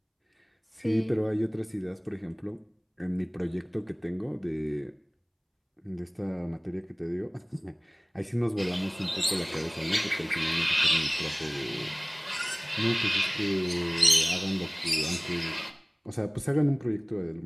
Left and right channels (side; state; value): both; identical; correlation 1.00